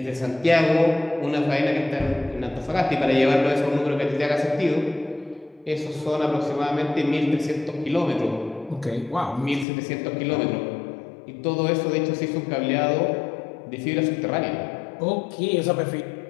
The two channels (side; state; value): right; drops out; at 9.7 s